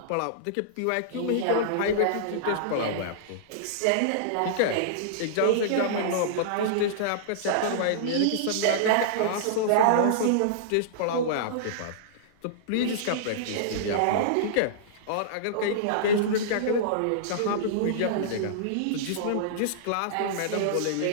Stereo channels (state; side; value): different; both; correlation -0.02